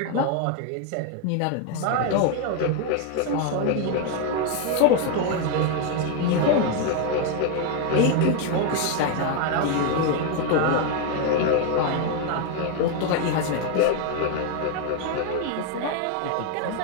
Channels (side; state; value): both; different; correlation 0.01